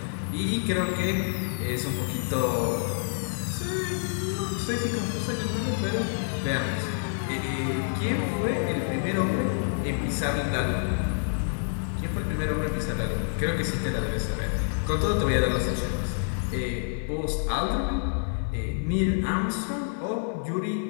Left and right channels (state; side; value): silent; right; digital silence